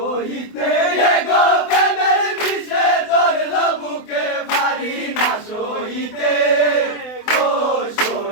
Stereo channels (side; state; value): right; late; 24 ms